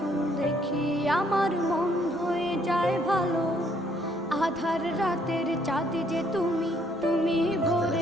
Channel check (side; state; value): both; normal; correlation 0.67